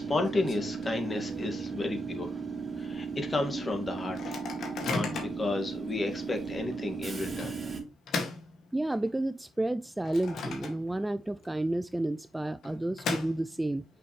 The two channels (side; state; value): both; normal; correlation 0.86